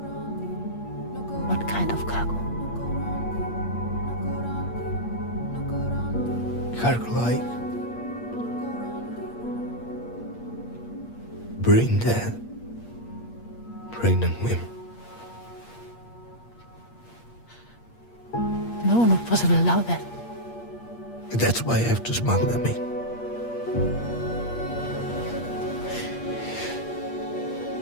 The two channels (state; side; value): late; right; 8.5 ms